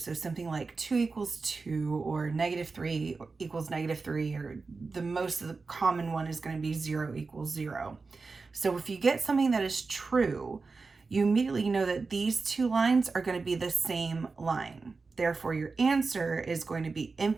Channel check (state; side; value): quieter; left; 4.2 dB